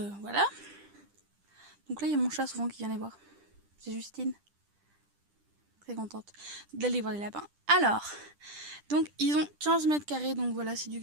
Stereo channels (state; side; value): late; left; 10 ms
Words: Donc là il y a mon chat souvent qui vient les voir. C'est Justine. Très contente d'aller voir les lapins. Alors, donc ils ont 15 mètres carrés, donc voilà, c'est du